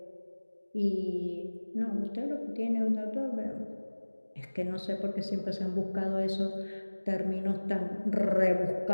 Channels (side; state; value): both; inverted; correlation -1.00